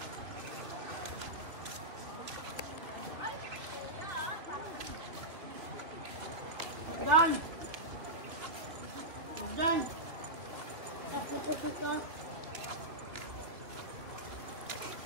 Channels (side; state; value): left; late; 2.7 ms